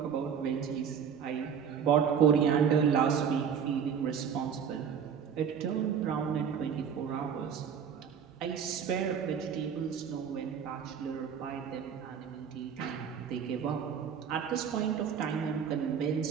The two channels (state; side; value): quieter; left; 7.4 dB